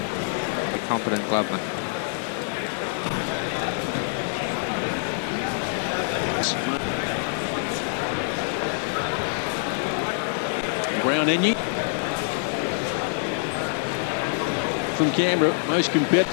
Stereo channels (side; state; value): right; silent; 61 dB below the other